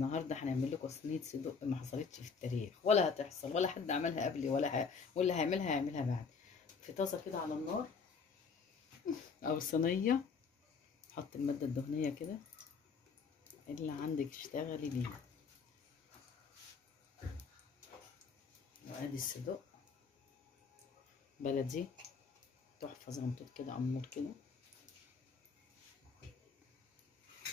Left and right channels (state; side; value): quieter; right; 5.4 dB